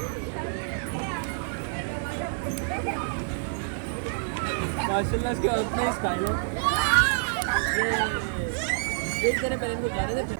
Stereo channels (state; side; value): silent; left; digital silence